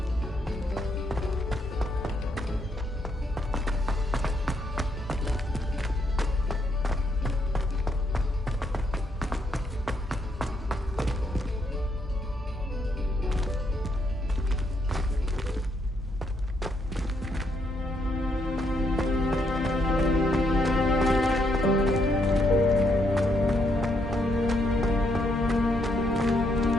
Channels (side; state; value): both; normal; correlation 0.75